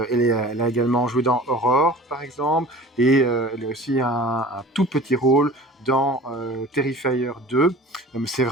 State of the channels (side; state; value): both; normal; correlation 0.42